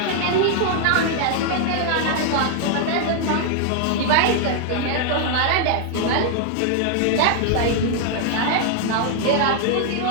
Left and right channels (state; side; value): different; both; correlation 0.00